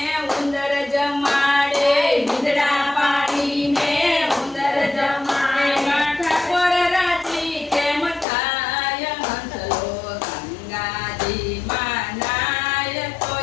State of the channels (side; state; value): right; drops out; at 8.2 s